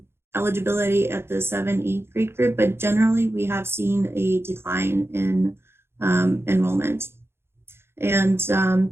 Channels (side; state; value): left; late; 0.12 ms